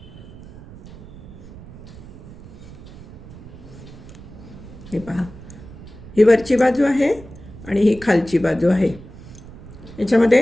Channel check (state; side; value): noise; right; rumble, 17 dB below the sound